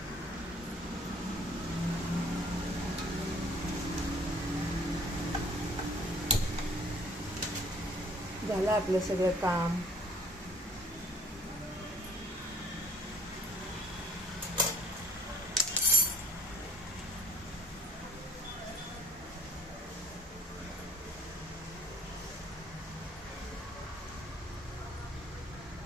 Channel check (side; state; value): both; normal; correlation 0.56